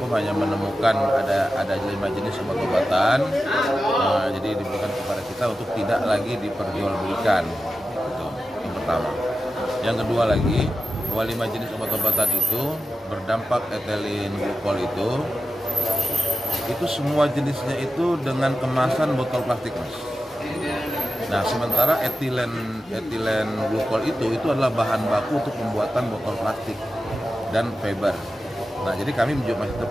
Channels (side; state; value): both; normal; correlation 0.92